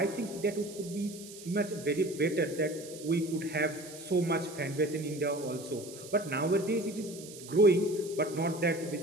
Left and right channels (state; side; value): noise; right; hiss, 15 dB below the sound